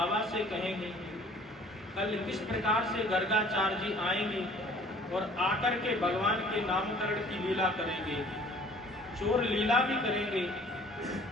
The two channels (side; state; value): both; normal; correlation 0.53